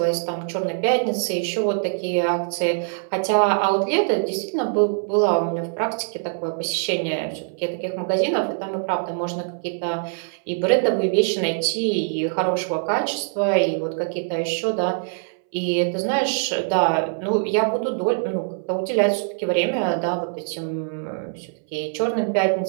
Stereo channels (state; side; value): silent; left; 63 dB below the other